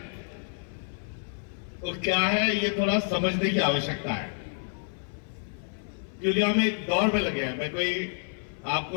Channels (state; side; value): silent; right; 57 dB below the other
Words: तो क्या है ये थोड़ा समझने की आवश्यकता है, क्योंकि हम एक दौर में लगे हैं। मैं कोई